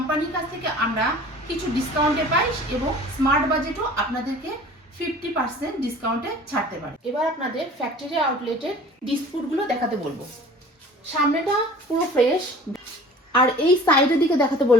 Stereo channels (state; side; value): normal; both; correlation 0.45